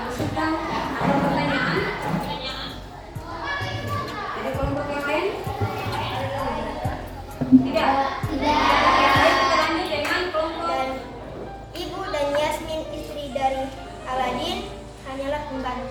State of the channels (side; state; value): both; identical; correlation 1.00